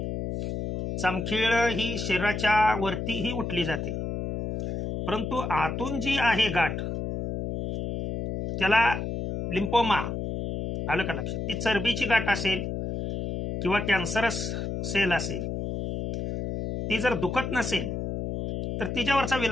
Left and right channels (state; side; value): noise; left; hum, 4 dB below the sound